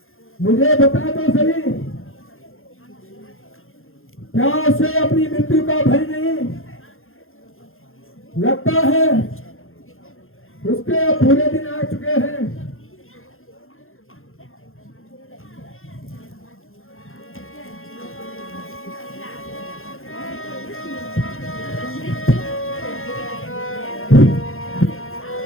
मुझे बता तो सही क्या उसे अपनी मृत्यु का भय नहीं लगता है उसके अब बुरे दिन आ चुके हैं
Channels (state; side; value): late; right; 0.60 ms